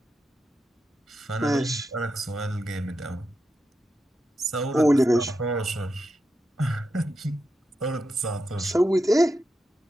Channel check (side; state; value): both; normal; correlation 0.87